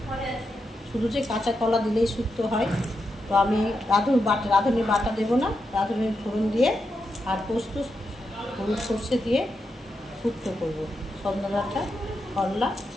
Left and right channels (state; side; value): normal; both; correlation 0.85